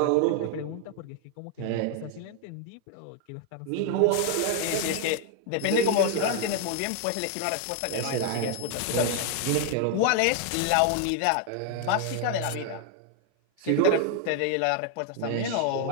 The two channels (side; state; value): both; different; correlation 0.00